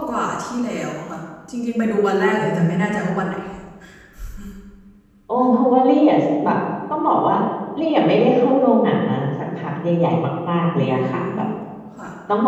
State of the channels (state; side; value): identical; both; correlation 1.00